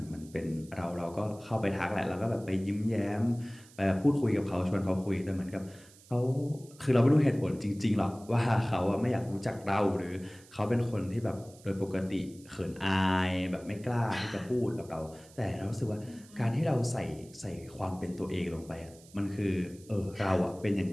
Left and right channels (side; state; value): right; noise; hiss, 24 dB below the sound